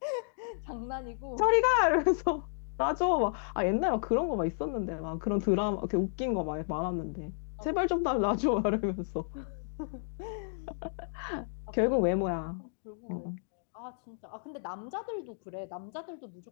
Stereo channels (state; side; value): silent; right; digital silence